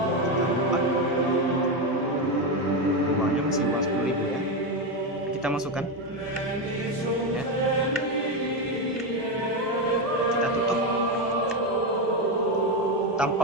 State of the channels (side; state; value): both; normal; correlation 0.11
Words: Kita lipat. Uangnya masih uang 10.000 ya. Kita masukkan. Ya. Kita tutup tanpa